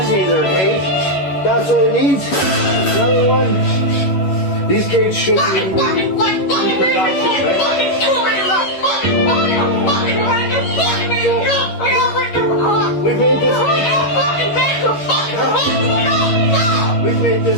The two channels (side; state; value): right; late; 11 ms